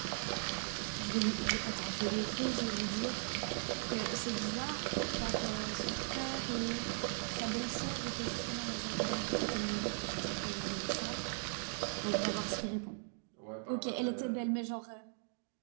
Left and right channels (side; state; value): left; silent; 52 dB below the other